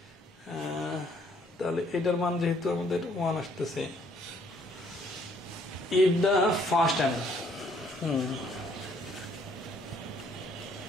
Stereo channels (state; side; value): normal; both; correlation 0.65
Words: তাহলে এটার মান যেহেতু আমাদের 1 আসতেছে, if the first time